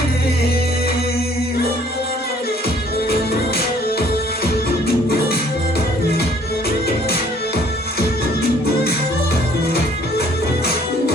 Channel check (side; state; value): both; normal; correlation 0.59